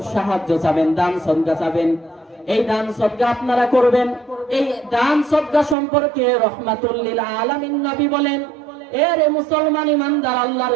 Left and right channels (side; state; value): left; drops out; at 5.8 s